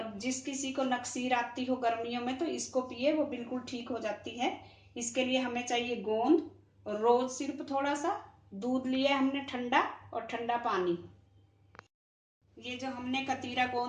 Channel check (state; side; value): identical; both; correlation 1.00